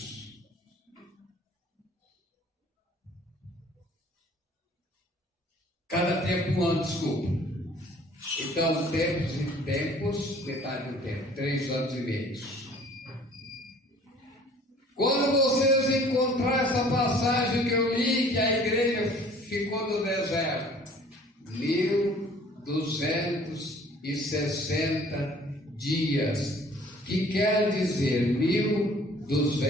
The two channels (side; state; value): both; normal; correlation 0.53